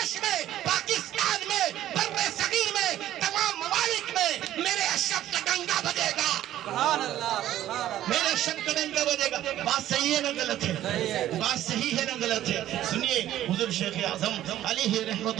میں، پاکستان میں، بر صغیر میں، تمام ممالک میں میرے اشرف کا ڈنگا بجے گا. سبحان اللہ، میرے اشرف کا ڈنگا بجے گا. بات صحیح ہے نہ غلط ہے؟ بات صحیح ہے نہ غلط ہے؟ سنیے حضور شیخ اعظم علیہ رحمت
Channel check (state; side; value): quieter; left; 12.9 dB